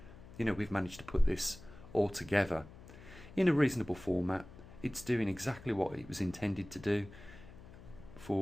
You know, we've managed to put this all together in a reasonable format. It's doing exactly what it was intended to do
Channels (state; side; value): noise; left; hum, 18 dB below the sound